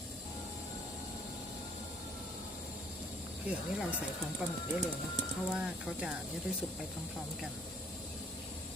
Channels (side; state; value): both; normal; correlation 0.59